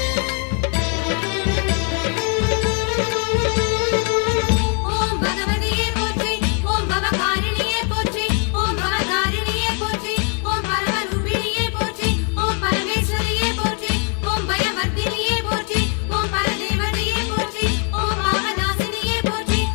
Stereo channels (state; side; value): quieter; right; 38.8 dB